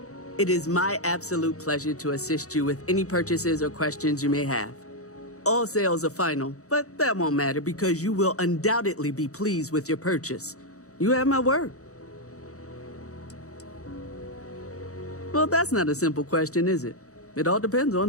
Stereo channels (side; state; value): right; late; 0.65 ms